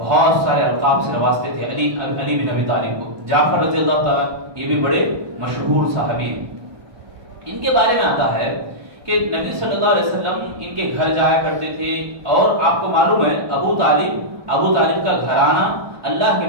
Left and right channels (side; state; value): left; late; 1.2 ms